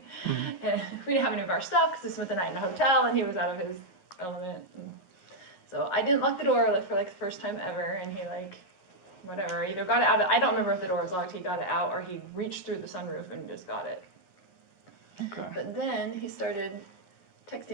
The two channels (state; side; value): late; right; 11 ms